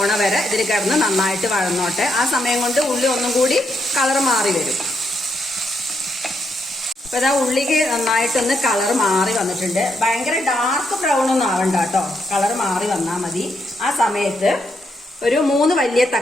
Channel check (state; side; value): normal; both; correlation 0.79